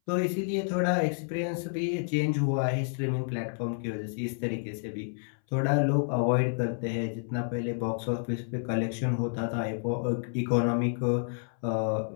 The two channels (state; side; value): silent; right; 58 dB below the other